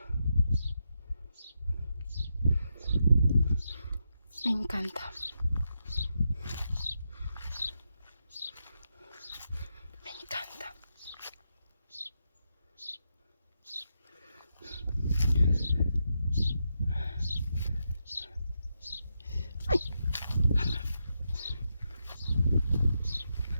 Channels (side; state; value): both; inverted; correlation -0.84